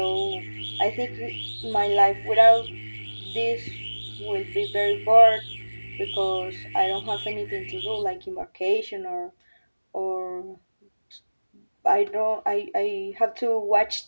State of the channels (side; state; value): both; inverted; correlation -1.00